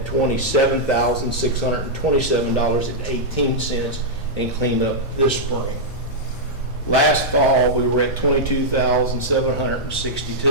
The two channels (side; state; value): both; normal; correlation -0.07